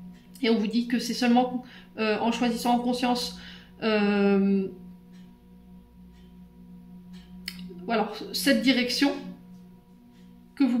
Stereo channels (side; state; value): both; identical; correlation 1.00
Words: Et on vous dit que c'est seulement en choisissant en conscience voilà, cette direction que vous